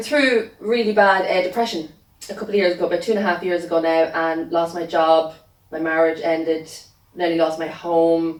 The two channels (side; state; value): both; identical; correlation 1.00